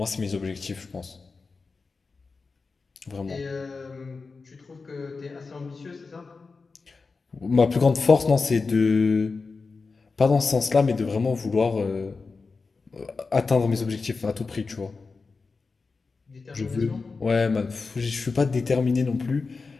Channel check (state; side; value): quieter; right; 4.3 dB